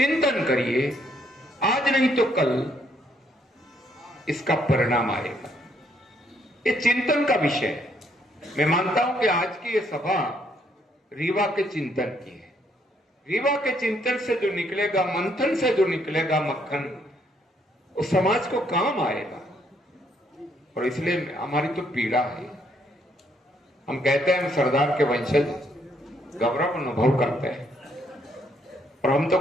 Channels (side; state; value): both; normal; correlation 0.70